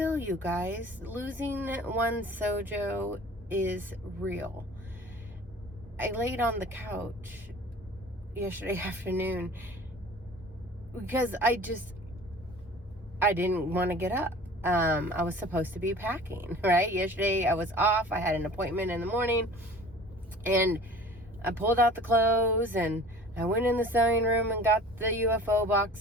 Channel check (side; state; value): both; normal; correlation 0.44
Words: you guys. Losing one's SEWJO is real. I laid on the couch yesterday afternoon because I didn't want to get up. I was supposed to be packing, right? Yesterday I was off. I had an appointment in the morning, and I pulled out the clothes and I went in the sewing room and got the UFO